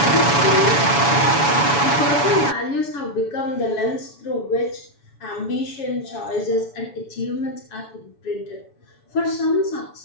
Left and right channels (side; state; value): right; late; 7.0 ms